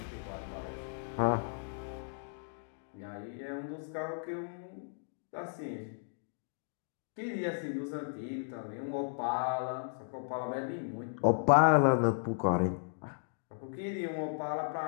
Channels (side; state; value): right; silent; digital silence